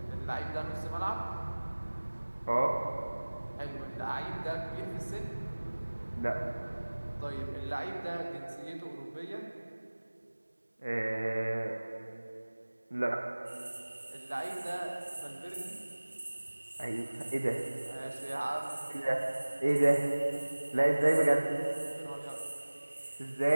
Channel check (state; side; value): inverted; both; correlation -1.00